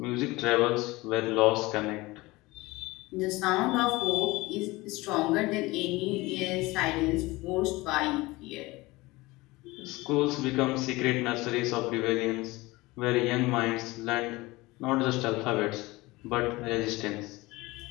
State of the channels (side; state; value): right; quieter; 21.3 dB